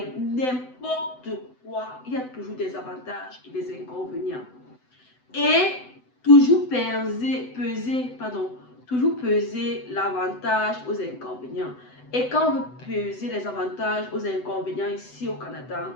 n'importe quoi, il y a toujours des avantages et des inconvénients. Et toujours peser l'avantage aux inconvénients. Et quand on veut peser les avantages aux inconvénients ici au Canada,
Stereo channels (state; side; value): late; right; 7.9 ms